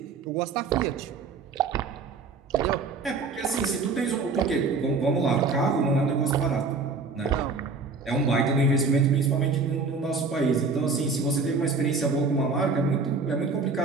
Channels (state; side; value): quieter; left; 4.3 dB